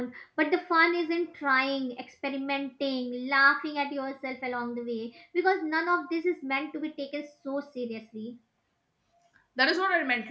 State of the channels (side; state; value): both; identical; correlation 1.00